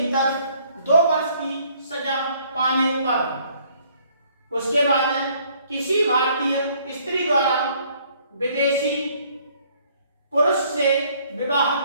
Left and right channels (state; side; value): inverted; both; correlation -0.62